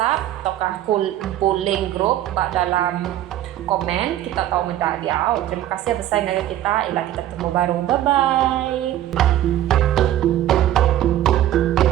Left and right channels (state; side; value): quieter; left; 12.7 dB